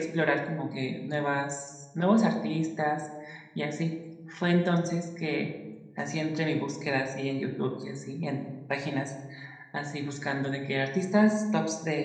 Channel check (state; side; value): identical; both; correlation 1.00